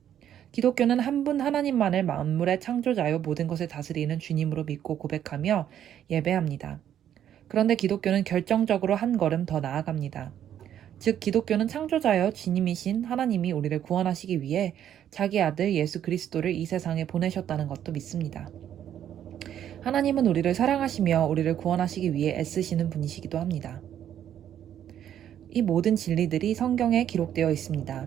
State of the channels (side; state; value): left; quieter; 10.3 dB